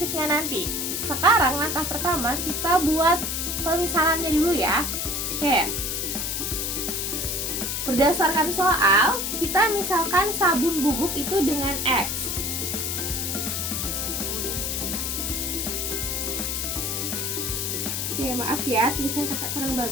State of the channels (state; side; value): noise; left; hiss, 1 dB below the sound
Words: nanti. Sekarang langkah pertama kita buat pemisalannya dulu ya. Oke. Berdasarkan soal, kita misalkan sabun bubuk itu dengan X. Audio Jungle. Oke, maaf ya, tulisan kakak kurang